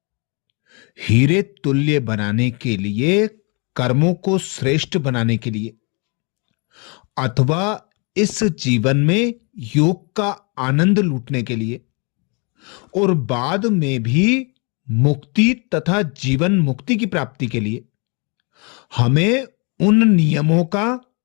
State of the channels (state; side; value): quieter; right; 32.6 dB